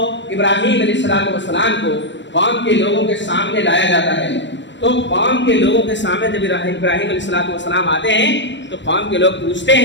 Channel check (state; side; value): late; right; 0.53 ms